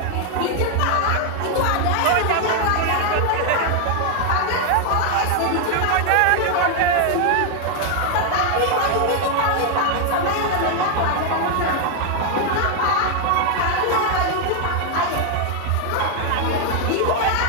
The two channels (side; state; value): both; different; correlation 0.00